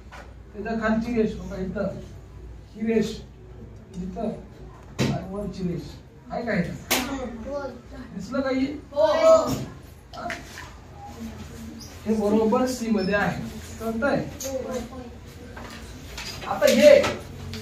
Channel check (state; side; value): identical; both; correlation 1.00